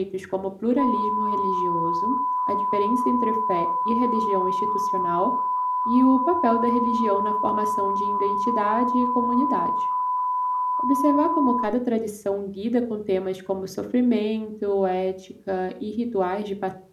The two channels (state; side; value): identical; both; correlation 1.00